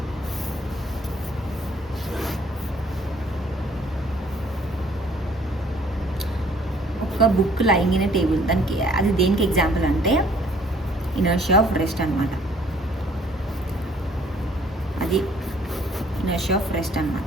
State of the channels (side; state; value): both; normal; correlation 0.59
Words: ఒక బుక్ లైయింగ్ ఇన్ టేబుల్, దానికి అది దేనికి ఎగ్జాంపుల్ అంటే ఇనర్షియా ఆఫ్ రెస్ట్ అనమాట. అది ఇనర్షియా ఆఫ్ రెస్ట్